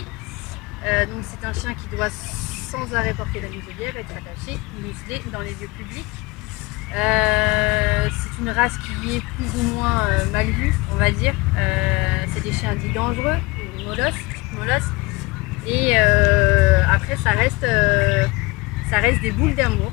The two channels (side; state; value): right; quieter; 24.0 dB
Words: Donc c'est un chien qui doit sans arrêt porter la muselière, être attaché, muselé dans les lieux publics. C'est une race qui est plus ou moins mal vue, on va dire. C'est des chiens dits dangereux, des molosses. Et après ça reste des boules d'amour,